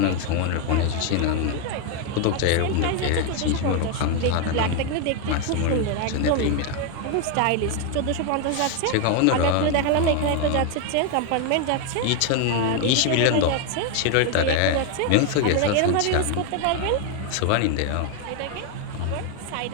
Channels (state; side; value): different; both; correlation 0.01